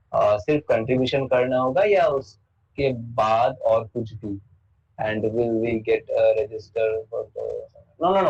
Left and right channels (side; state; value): both; identical; correlation 1.00